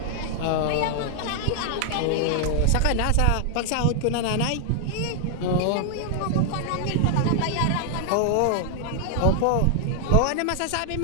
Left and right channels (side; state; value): both; different; correlation 0.00